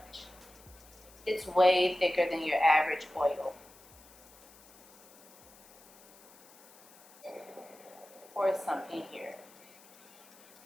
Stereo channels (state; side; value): noise; left; hiss, 25 dB below the sound